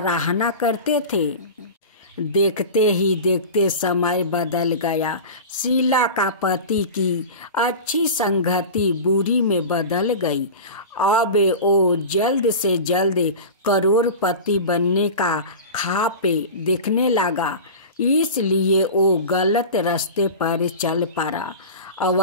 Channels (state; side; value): inverted; both; correlation -0.31